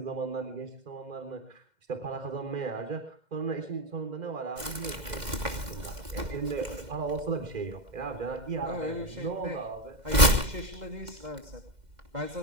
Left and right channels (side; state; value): left; late; 2.1 ms